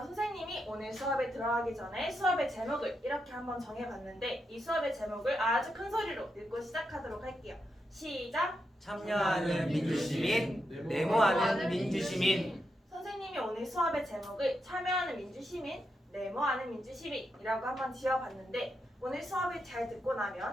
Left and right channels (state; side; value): normal; both; correlation 0.84